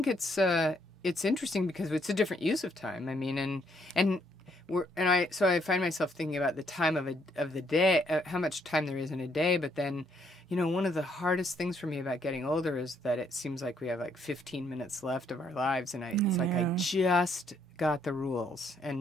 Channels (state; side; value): normal; both; correlation 0.70